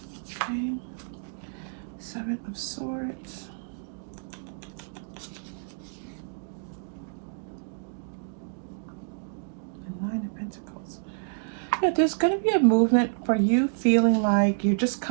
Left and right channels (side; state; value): left; silent; digital silence